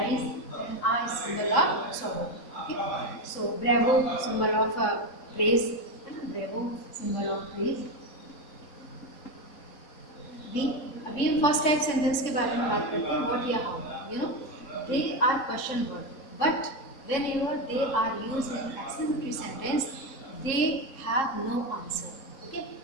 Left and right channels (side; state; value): right; late; 3.6 ms